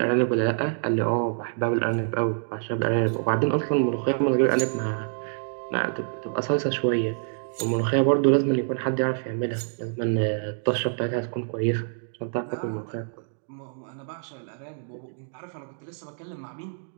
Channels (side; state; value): left; silent; digital silence